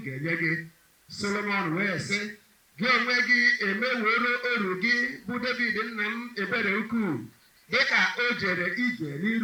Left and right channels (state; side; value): identical; both; correlation 1.00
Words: ga-enye gị. Solomon wee sị, gị onwe gị emeworo oru gị bụ David nna m ebere ukwuu, dịka o jere ije